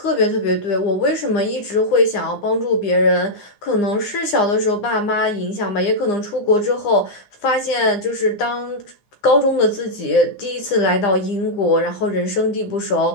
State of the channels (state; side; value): late; right; 9.8 ms